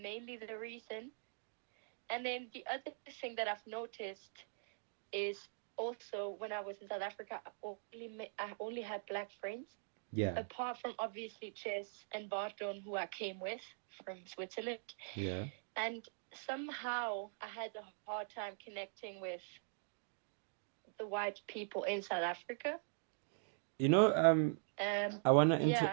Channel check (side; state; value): left; silent; digital silence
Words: the reason. And then the other thing that I've noticed is also when I was in South Africa, I only had Black friends. Yeah. Apart from obviously Chess and Barton, who I came with from Switzerland. Yeah. And somehow I had a hard time connecting with the white people in South Africa. You know, I